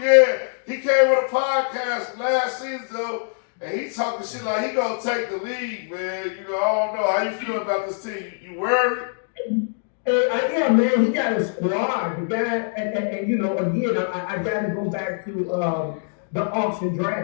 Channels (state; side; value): silent; right; digital silence